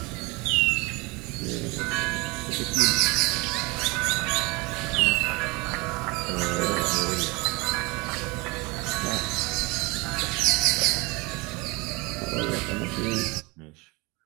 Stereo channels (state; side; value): quieter; left; 25.8 dB